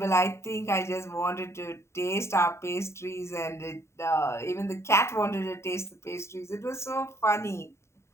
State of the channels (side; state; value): right; late; 0.13 ms